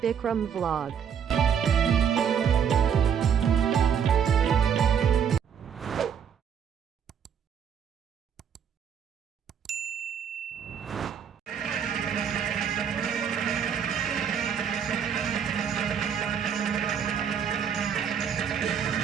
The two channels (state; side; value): quieter; left; 7.8 dB